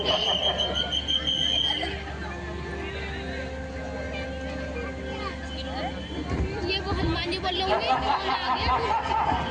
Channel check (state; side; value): identical; both; correlation 1.00